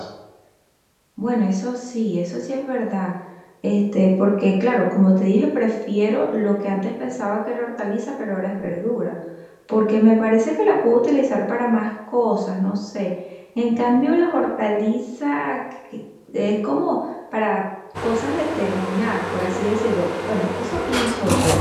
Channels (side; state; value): both; identical; correlation 1.00